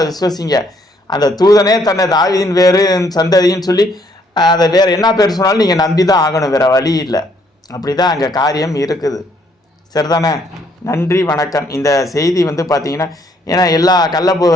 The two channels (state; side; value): normal; both; correlation 0.68